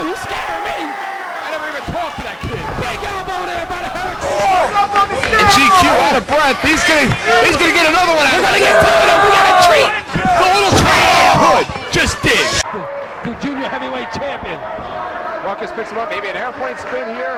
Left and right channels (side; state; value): both; identical; correlation 1.00